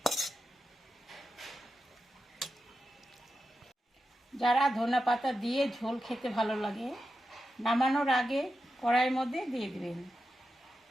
যারা ধনেপাতা দিয়ে ঝোল খেতে ভালো লাগে, নামানোর আগে কড়াইয়ের মধ্যে দিয়ে দিবেন।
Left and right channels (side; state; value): both; normal; correlation 0.90